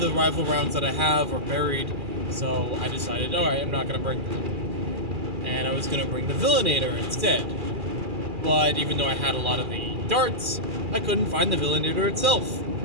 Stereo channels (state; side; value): late; left; 2.4 ms